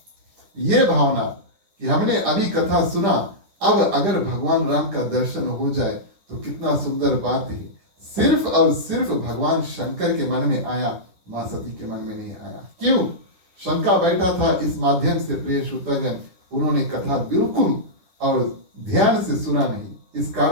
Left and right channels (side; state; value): left; late; 10 ms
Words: ये भावना कि हमने अभी कथा सुना, अब अगर भगवान राम का दर्शन हो जाए तो कितना सुंदर बात है। सिर्फ और सिर्फ भगवान शंकर के मन में आया, मां सती के मन में नहीं आया। क्यों? शंका बैठा था इस माध्यम से प्रिय श्रोतागण, उन्होंने कथा बिल्कुल और ध्यान से सुना नहीं, इस